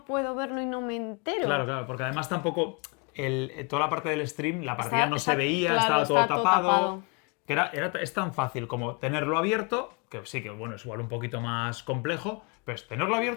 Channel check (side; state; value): right; quieter; 33.1 dB